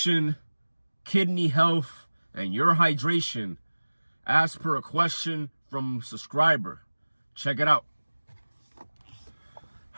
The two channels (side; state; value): both; inverted; correlation -1.00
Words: kidney health, and your hydration as per a question from a subscriber. Check it out.